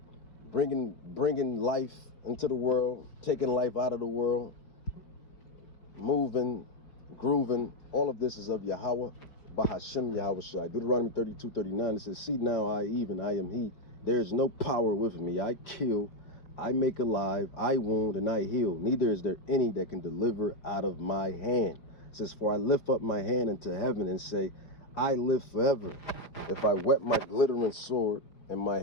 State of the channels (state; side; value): late; right; 5.0 ms